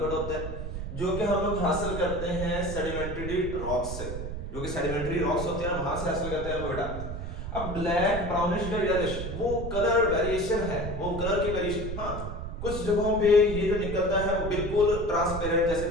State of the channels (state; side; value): noise; right; rumble, 6 dB below the sound